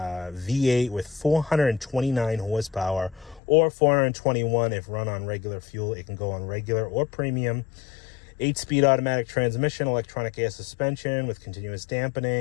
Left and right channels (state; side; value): drops out; right; at 3.4 s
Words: with 429 horsepower, or 421 if run on regular fuel. It can go on regular or premium. 8-speed automatic transmission, electronic air suspension with continuous